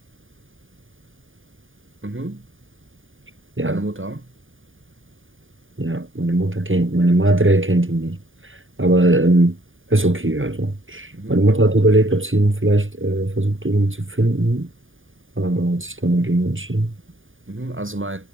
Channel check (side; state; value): left; late; 0.58 ms